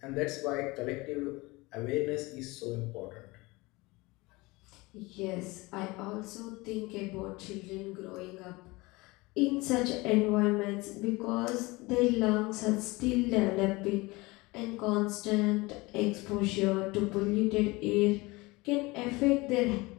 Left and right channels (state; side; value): quieter; right; 23.0 dB